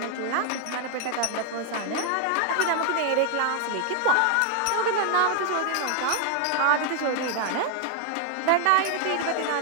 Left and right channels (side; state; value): both; different; correlation 0.00